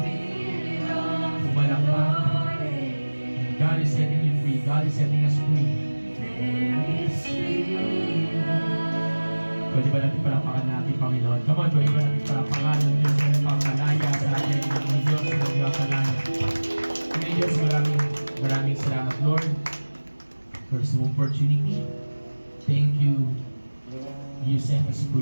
Spirit of the Umalakpak. Lord is, God is setting you free. God is setting us free. Pwede ba natin palakpakan natin, Panginoon? Come on, pwede ba natin palakpakan ng Diyos na nagpapalaya sa atin ng Diyos na nagpapalaya. Kaya Diyos, maraming salamat, Lord, for this opportunity. Thank you. You set us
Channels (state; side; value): inverted; both; correlation -1.00